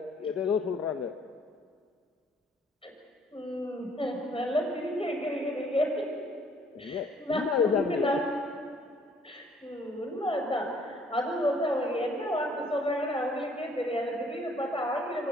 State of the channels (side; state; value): both; normal; correlation 0.61